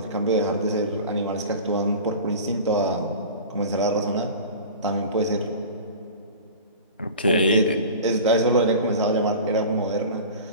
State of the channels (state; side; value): inverted; both; correlation -0.36